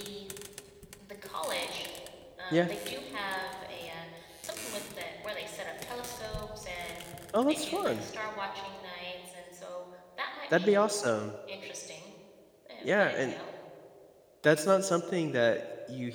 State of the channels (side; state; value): both; identical; correlation 1.00